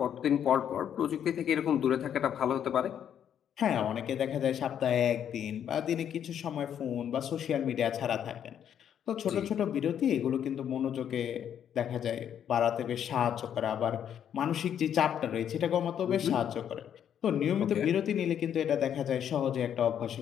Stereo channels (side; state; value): right; quieter; 9.2 dB